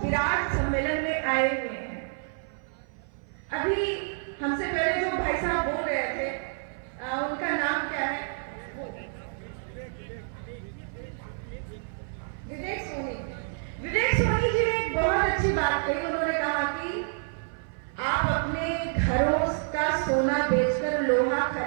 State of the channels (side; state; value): left; silent; 57 dB below the other